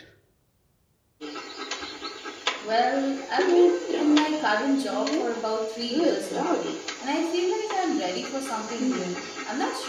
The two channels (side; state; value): both; identical; correlation 1.00